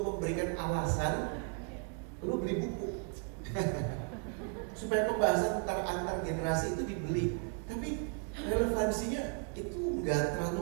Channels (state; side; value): quieter; left; 39.2 dB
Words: memberikan alasan lu beli buku supaya pembahasan antar generasi itu dibeli. Tapi relevansinya itu nggak